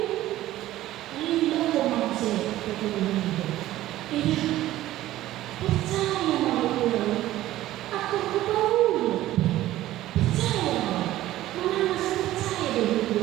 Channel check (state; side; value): quieter; left; 14.8 dB